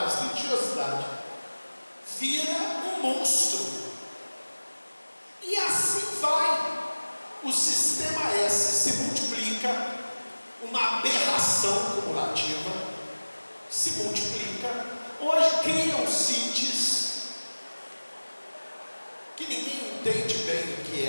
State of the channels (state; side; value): inverted; both; correlation -1.00